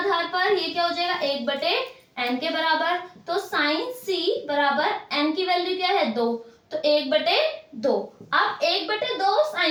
पर ये क्या हो जाएगा, 1/n के बराबर। तो साइन c बराबर n की वैल्यू क्या है, 2, तो 1/2। अब 1/2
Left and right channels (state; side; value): identical; both; correlation 1.00